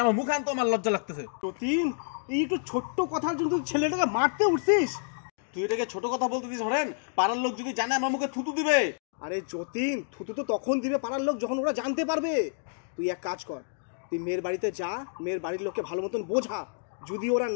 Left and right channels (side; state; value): right; silent; digital silence